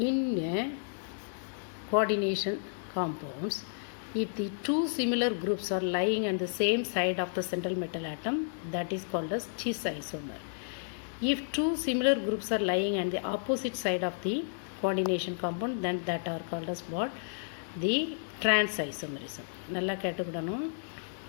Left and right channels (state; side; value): silent; right; digital silence